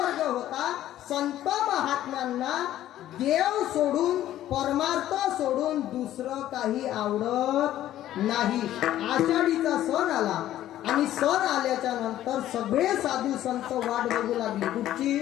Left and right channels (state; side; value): quieter; right; 13.0 dB